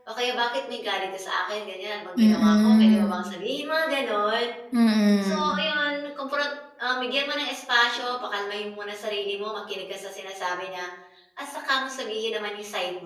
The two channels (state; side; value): identical; both; correlation 1.00